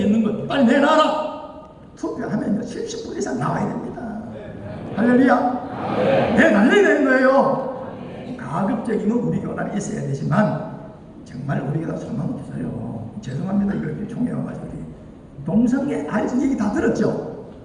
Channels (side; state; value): both; identical; correlation 1.00